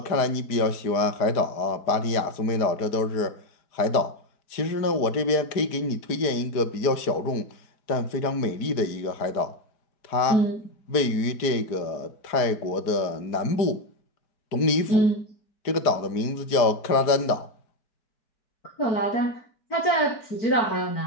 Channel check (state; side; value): late; right; 4.9 ms